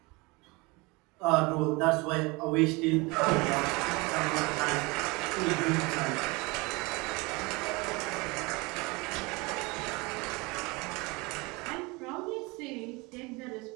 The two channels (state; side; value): quieter; left; 25.7 dB